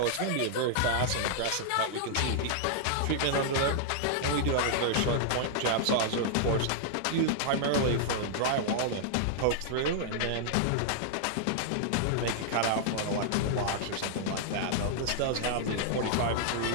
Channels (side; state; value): both; different; correlation -0.01